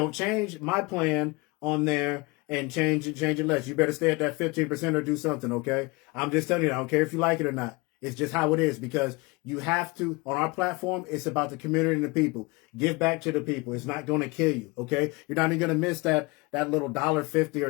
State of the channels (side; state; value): right; quieter; 25.6 dB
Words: change my plan on there and change it less. You better stay at that 15% or do something, okay? I'm just telling you, I don't care if you like it or not. It's just how it is because you have to, on our platform, it's about the community and the people. Give back to the people. It's not going to kill you, okay? You're not even going to miss that little $1.50